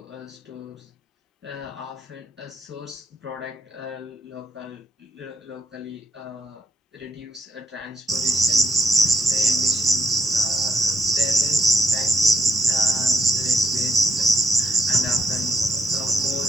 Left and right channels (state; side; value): normal; both; correlation 0.76